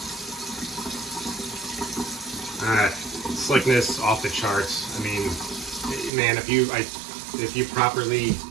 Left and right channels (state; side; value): drops out; left; at 6.1 s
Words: slickness off the charts. I mean, man, if you properly